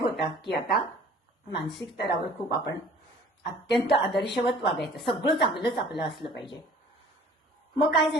की आता मानसिक स्तरावर खूप आपण अत्यंत आदर्शवत वागायचं, सगळं चांगलंच आपलं असलं पाहिजे. मग काय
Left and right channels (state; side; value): normal; both; correlation 0.50